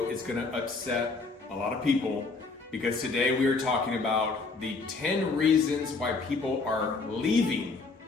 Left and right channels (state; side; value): quieter; right; 4.0 dB